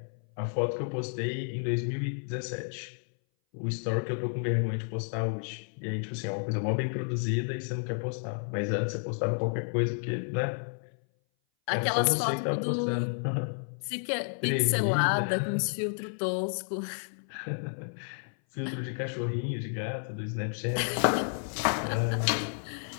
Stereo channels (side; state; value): right; silent; 57 dB below the other